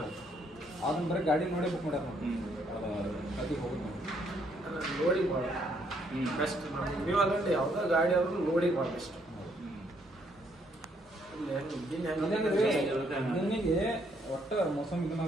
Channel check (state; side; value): normal; both; correlation 0.70